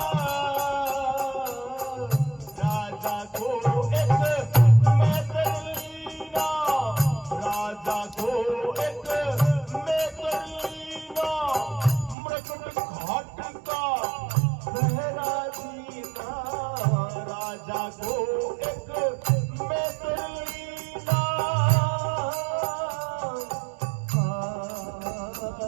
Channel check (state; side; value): drops out; left; at 12.2 s